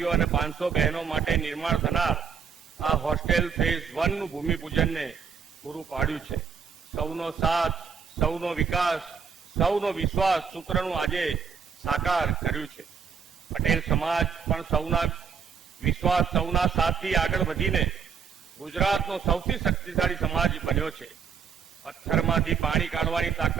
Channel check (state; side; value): quieter; left; 6.6 dB